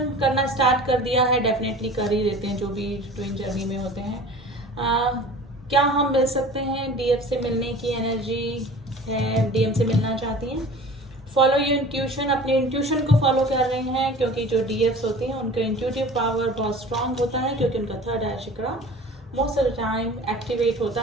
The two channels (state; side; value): normal; both; correlation 0.41